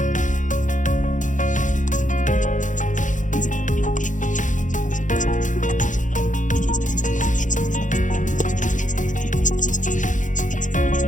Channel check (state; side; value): late; right; 0.37 ms